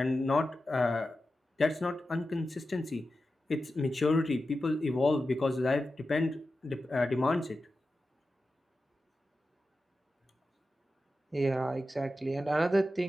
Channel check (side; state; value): both; normal; correlation 0.92